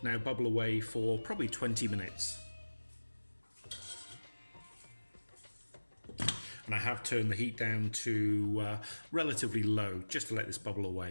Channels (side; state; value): both; inverted; correlation -1.00